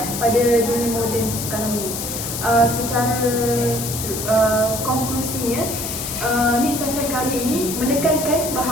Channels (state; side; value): noise; left; hiss, 5 dB below the sound